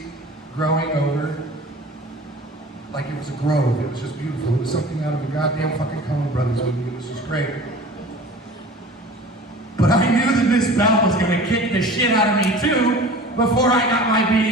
growing over Like it was a grove. It was just beautiful. It was something out of a goddamn fucking Coen Brothers movie. It was just great. But I knew that Miss Bell was gonna kick the shit out of me too before I got my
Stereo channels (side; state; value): both; normal; correlation 0.41